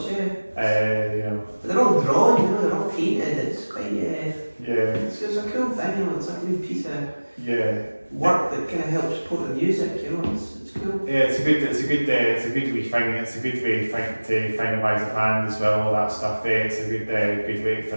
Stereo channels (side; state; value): both; inverted; correlation -1.00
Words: But they're all drawn, you know, they're all painted. It's quite It's a cool thing, you know. It's like a new piece of work that kind of helps support the music, you know. It's cool. Yeah, it's a good wee thing. It's a good way to finalise a band as well. All that stuff. It's a good way to